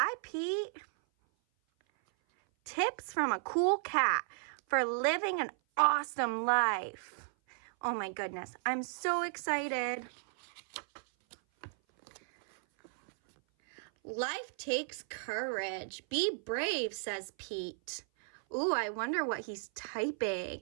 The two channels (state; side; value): silent; left; 55 dB below the other